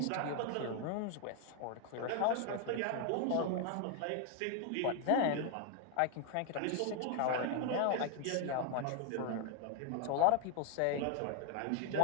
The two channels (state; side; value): different; both; correlation 0.01